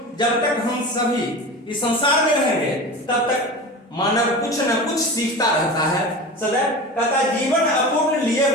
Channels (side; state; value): both; normal; correlation 0.31